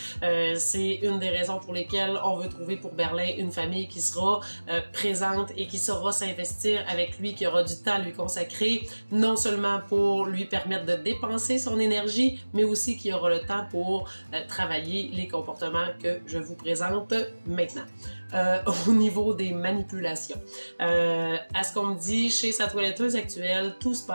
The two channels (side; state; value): both; inverted; correlation -1.00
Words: C'est une des raisons pour lesquelles on veut trouver pour Berlin une famille qui sera présente et qui saura s'investir avec lui, qui aura du temps à lui consacrer, non seulement pour lui permettre de dépenser son énergie, mais aussi qui aura le temps pour travailler les comportements que je vous présente maintenant. Au niveau des manipulations. À ce qu'on me dit, chez sa toiletteuse actuelle, tout se